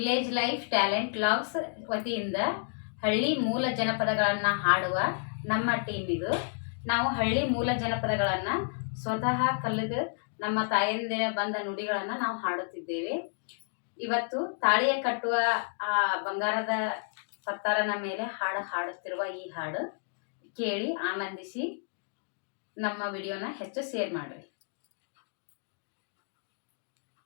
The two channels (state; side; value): silent; right; digital silence